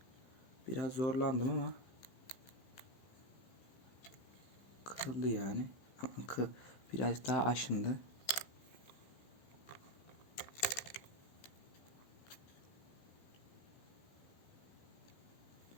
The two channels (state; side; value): late; right; 15 ms